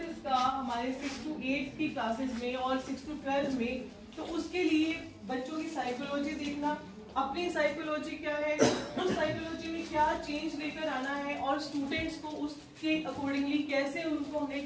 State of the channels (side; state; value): both; identical; correlation 1.00